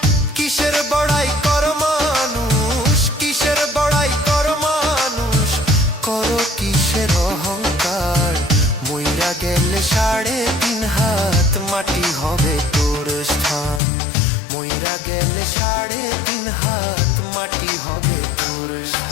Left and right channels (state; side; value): drops out; right; at 13.8 s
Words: কিসের বড়াই কর মানুষ, কিসের বড়াই কর মানুষ, করো কিসের অহংকার। মইরা গেলে 3.5 হাত মাটি হবে তোর স্থান, মইরা গেলে 3.5 হাত মাটি হবে তোর